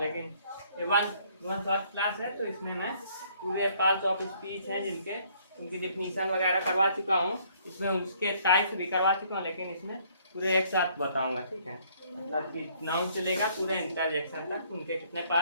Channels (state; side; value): inverted; both; correlation -0.63